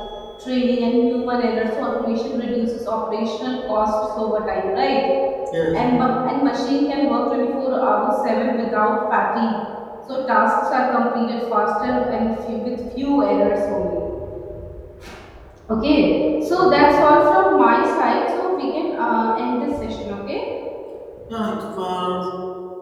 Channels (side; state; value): both; identical; correlation 1.00